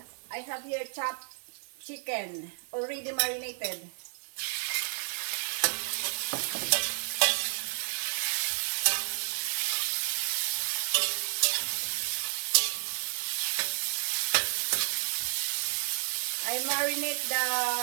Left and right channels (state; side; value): silent; left; 57 dB below the other